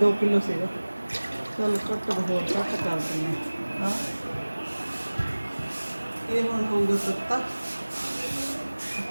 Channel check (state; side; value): inverted; both; correlation -1.00